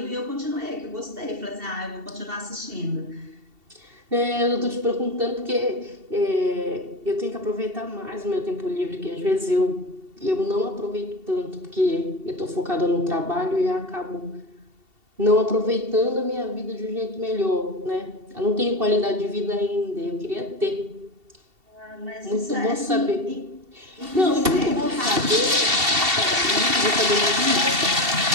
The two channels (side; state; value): left; late; 2.7 ms